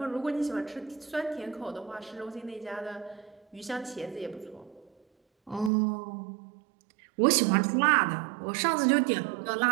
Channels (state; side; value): drops out; left; at 5.7 s